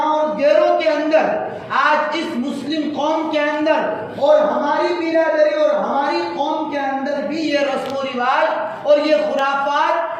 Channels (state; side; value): identical; both; correlation 1.00